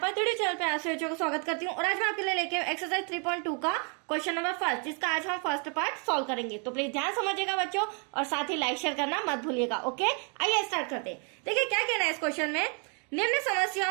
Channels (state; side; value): quieter; left; 38.8 dB